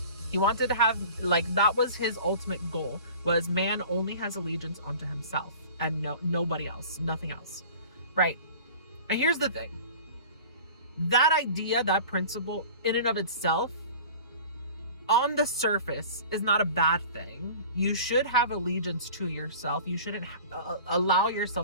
He wanted to have, like, that was his ultimate goal, was man only has allegiance onto himself and nobody else, nothing else, right? And here's the thing. That idea, that principle in and of itself, on the surface, is not a bad thing. You should have allegiance to yourself. You shouldn't allow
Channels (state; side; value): inverted; both; correlation -0.41